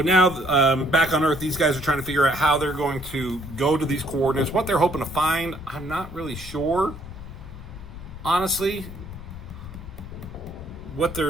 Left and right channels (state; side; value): noise; left; rumble, 14 dB below the sound